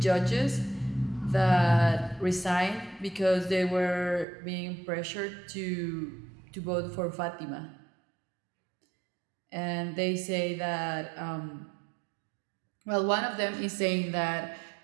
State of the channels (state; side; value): drops out; left; at 4.2 s